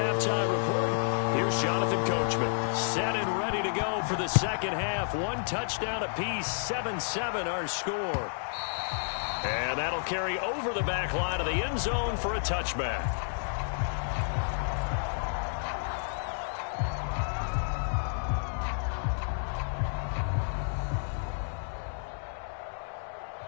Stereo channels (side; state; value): right; silent; 57 dB below the other